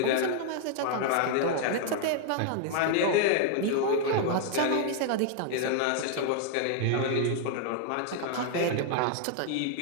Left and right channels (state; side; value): different; both; correlation 0.00